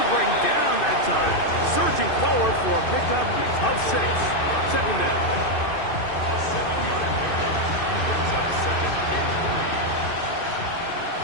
to bring down that time. Surging forward for a pickup of 6. Second down. A 7-yard pickup brings up 2nd and 3.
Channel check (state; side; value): late; right; 2.6 ms